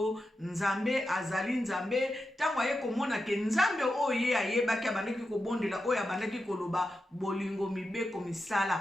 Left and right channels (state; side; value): normal; both; correlation 0.89